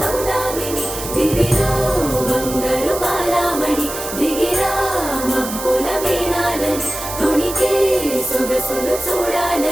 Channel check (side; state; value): right; noise; hiss, 8 dB below the sound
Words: దివిలో బంగారు బాలామణి దిగిరా మబ్బుల వీణాలని తుణికే సొగసులు